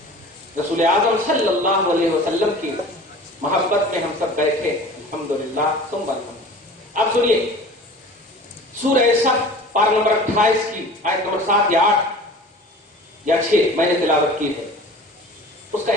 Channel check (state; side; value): normal; both; correlation 0.41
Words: رسول اعظم صلی اللہ علیہ وسلم کی محبت میں ہم سب بیٹھے الحمدللہ ثم الحمد. اب سنیے سورہ صف پارہ نمبر 28 کی آیت نمبر 7 یا 8 یا 6 میں نے تلاوت کی ہے, اس کا